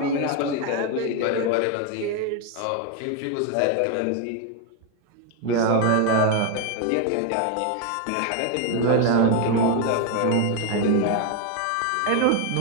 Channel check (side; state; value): both; different; correlation 0.01